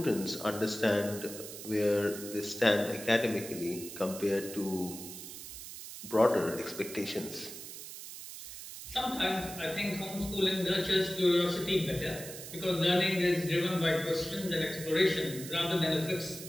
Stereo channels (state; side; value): noise; right; hiss, 11 dB below the sound